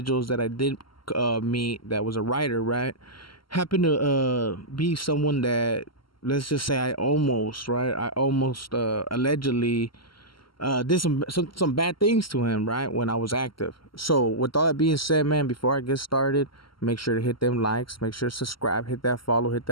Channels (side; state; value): right; late; 0.74 ms